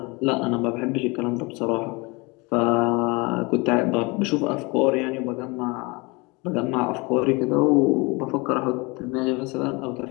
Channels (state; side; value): quieter; right; 26.7 dB